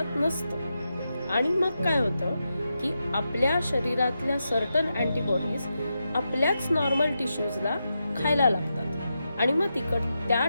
नसतं. आणि मग काय होतं की आपल्या शरीरातल्या सर्टन अँटीबॉडीज आपल्याच नॉर्मल टिश्यूजला खायला लागतात आणि मग त्या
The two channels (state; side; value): inverted; both; correlation -0.87